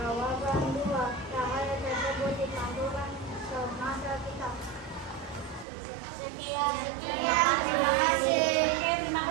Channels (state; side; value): drops out; left; at 5.7 s